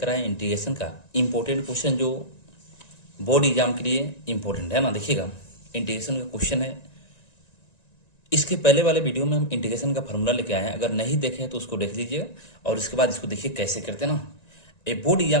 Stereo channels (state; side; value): late; right; 1.9 ms